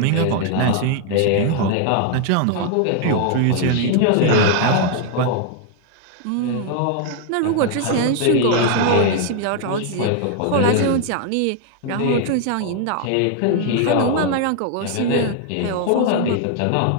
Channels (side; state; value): both; different; correlation 0.00